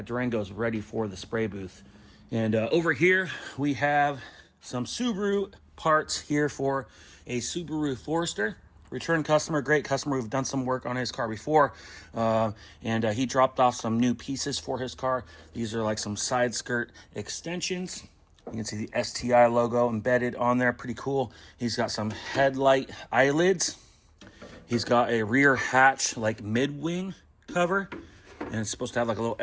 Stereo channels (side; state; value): both; identical; correlation 1.00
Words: Durango is ready for the spray booth. And over here, we have some Subaru parts here for a Subaru Forester. Return customer, great customer. We've done some work on his car before, and he dropped off some new pieces for his car. These are like some side skirt extensions. You can see the STI logo embedded on there. Pretty cool. He's got some headlight eyelids. He's got a rear hatch, like mid-wing cover. And it's supposed to have like a